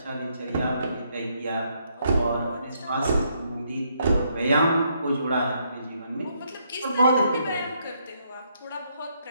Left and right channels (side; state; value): both; inverted; correlation -0.74